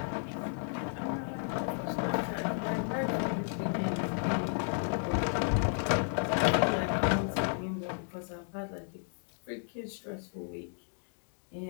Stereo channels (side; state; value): right; silent; digital silence